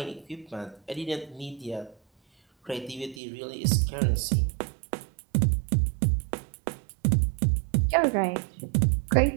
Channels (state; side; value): drops out; left; at 3.2 s